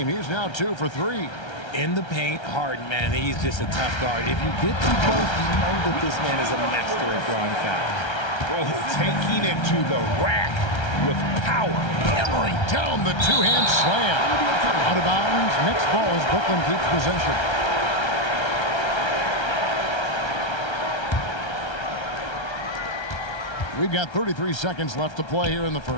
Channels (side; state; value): right; late; 1.3 ms